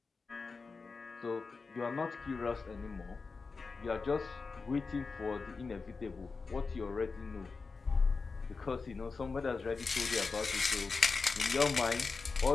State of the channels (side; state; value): right; quieter; 4.5 dB